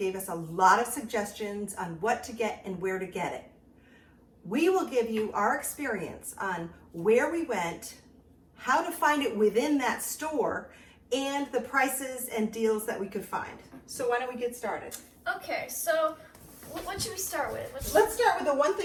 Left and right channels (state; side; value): identical; both; correlation 1.00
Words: us a lot of suggestions on what to get and where to get it. We will give you our experience on where we went, how to find it within that store, and the prices and deals that we could find. So why don't we get started? Okay, so what should we start with? Let's start with the one